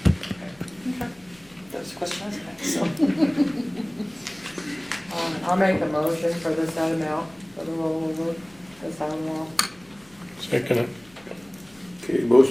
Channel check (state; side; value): noise; left; hum, 28 dB below the sound